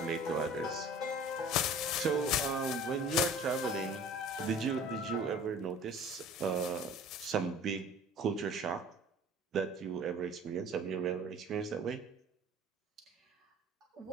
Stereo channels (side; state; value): both; normal; correlation 0.46